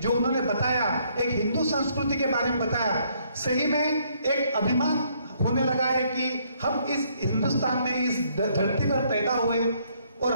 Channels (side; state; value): both; inverted; correlation -0.68